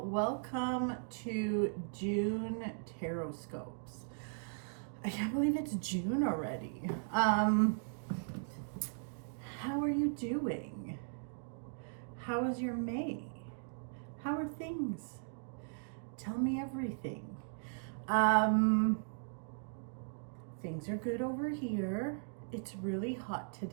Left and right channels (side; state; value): left; silent; digital silence